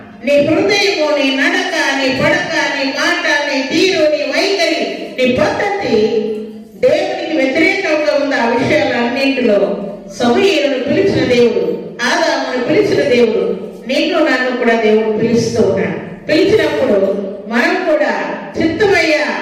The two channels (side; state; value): both; identical; correlation 1.00